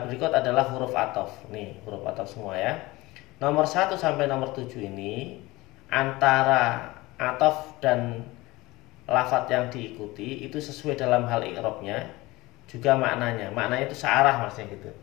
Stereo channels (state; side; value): quieter; right; 20.7 dB